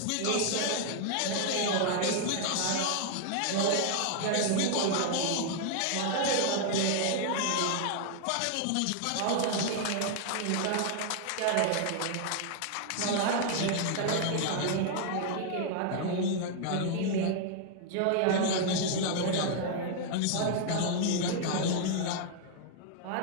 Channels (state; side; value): different; both; correlation 0.00